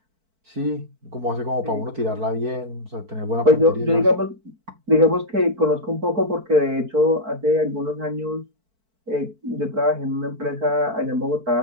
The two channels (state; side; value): late; left; 4.5 ms